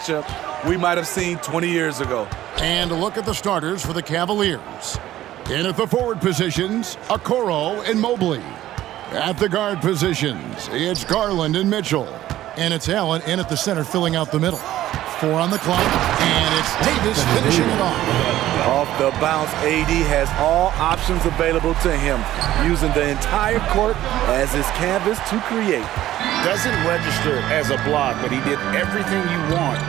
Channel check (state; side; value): quieter; left; 13.9 dB